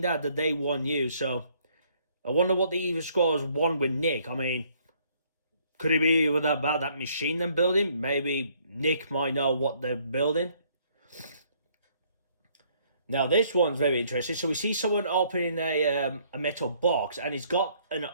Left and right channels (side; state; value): both; inverted; correlation -0.65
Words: that they want you. So, I wonder what the evil Skrulls want with Nick. I mean, could it be about that machine they're building? Maybe Nick might know what they're building. Now, this one's very interesting. So, we see someone opening a metal box, and it's got an